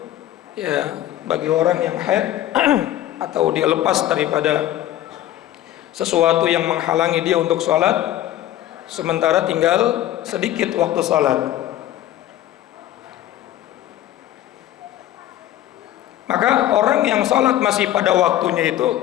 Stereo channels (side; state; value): right; quieter; 13.1 dB